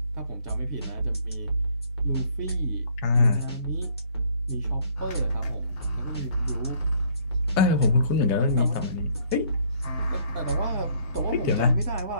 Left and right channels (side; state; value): both; inverted; correlation -0.61